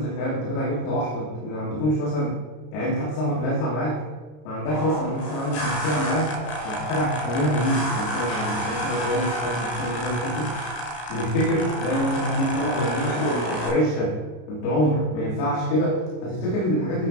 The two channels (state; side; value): late; right; 33 ms